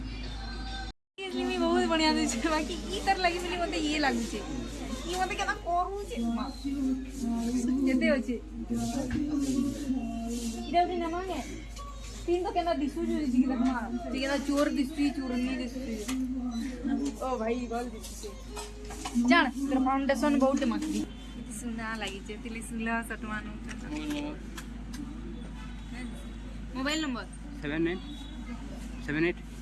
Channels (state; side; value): identical; both; correlation 1.00